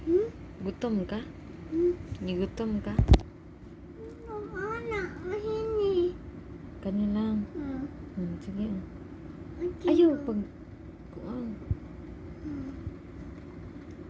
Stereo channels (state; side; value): identical; both; correlation 1.00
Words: Gutom ka? Gigutom ka? Anak, mahini. Kanilang. Sige. Okay. Ayaw. Pag... Kuang.